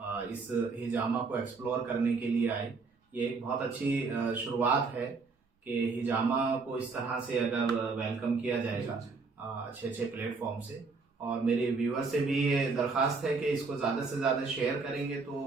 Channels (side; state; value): left; quieter; 4.3 dB